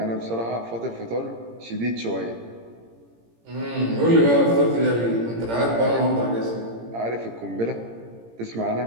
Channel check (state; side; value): late; left; 17 ms